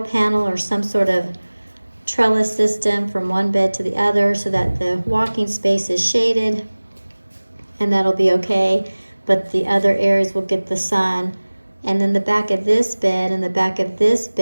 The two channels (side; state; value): both; inverted; correlation -1.00